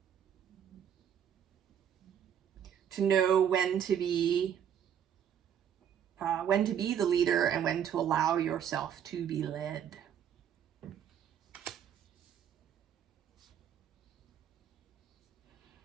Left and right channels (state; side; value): quieter; left; 9.0 dB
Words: To know when to be the leader and when to allow yourself to be led.